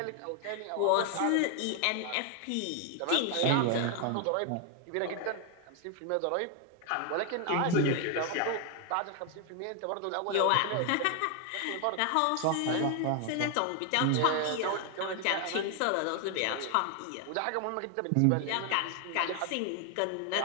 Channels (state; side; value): different; both; correlation 0.01